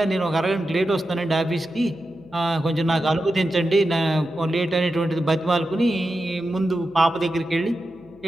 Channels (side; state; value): right; noise; hum, 28 dB below the sound